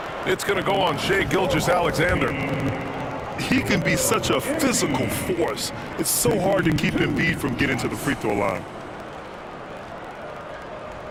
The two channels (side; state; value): both; identical; correlation 1.00